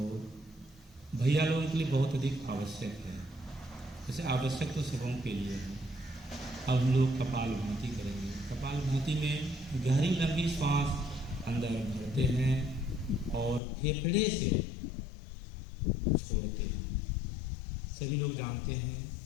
भैया लोगों के लिए बहुत अधिक आवश्यक है, जैसे आवश्यक तो सबों के लिए है। अब हम लोग कपालभाति करेंगे। कपालभाति में गहरी लंबी सांस अंदर भरते हैं और फेफड़े से छोड़ते हैं। सभी लोग जानते हैं,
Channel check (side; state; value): right; drops out; at 13.6 s